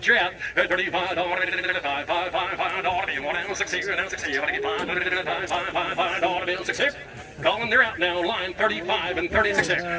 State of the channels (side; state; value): both; identical; correlation 1.00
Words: you out. At $35, $5 deal now, 6 here, now 6 here. $500 deal 6 here. Calling, they're out now. Line 35 and 36 here.